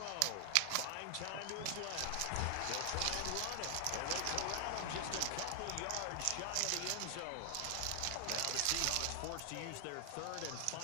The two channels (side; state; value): both; different; correlation 0.00